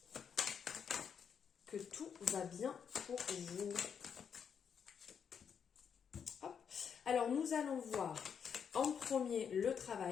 Que tout va bien pour vous. Hop. Alors, nous allons voir en premier le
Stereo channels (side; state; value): right; quieter; 7.3 dB